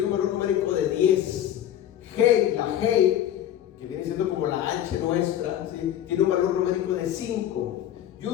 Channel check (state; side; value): quieter; right; 11.2 dB